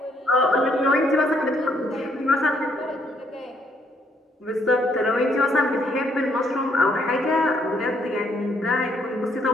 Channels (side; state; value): both; normal; correlation 0.70